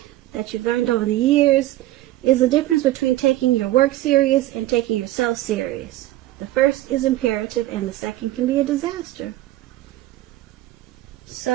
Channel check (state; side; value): quieter; left; 15.8 dB